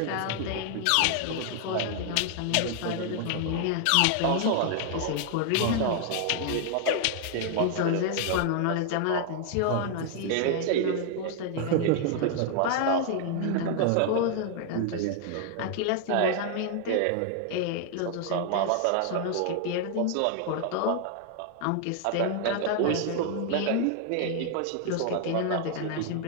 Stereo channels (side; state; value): both; different; correlation 0.00